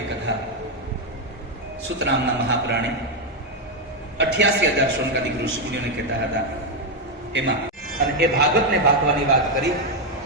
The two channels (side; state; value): both; normal; correlation 0.04